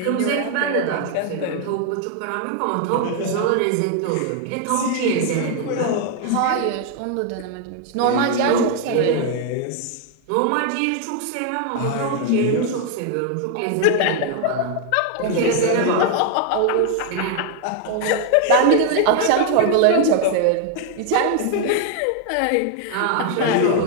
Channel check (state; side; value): different; both; correlation 0.00